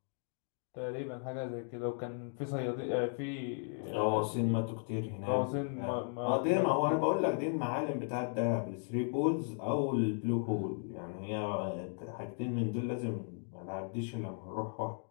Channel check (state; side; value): silent; right; 54 dB below the other